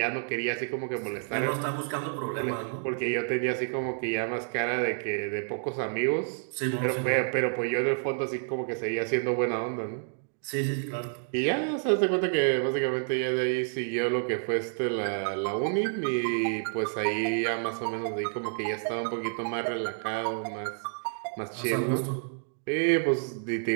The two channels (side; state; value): left; silent; digital silence